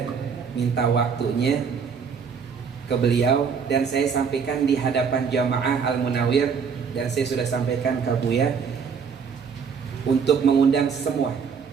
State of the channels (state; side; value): quieter; left; 6.3 dB